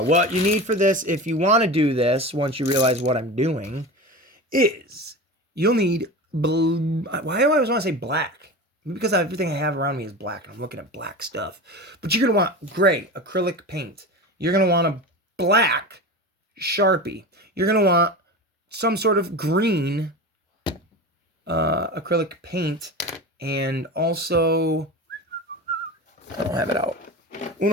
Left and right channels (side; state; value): both; normal; correlation 0.28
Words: what you need for this, if you want to do this, once you realize what I'm doing, is you'll need why do I always want to say black? Because everything I have around me is black, and I'm looking at black stuff. But you're going to want gray acrylic paint. You're going to want a black Sharpie. You're going to want some sort of green acrylic paint, and also, I don't have it out.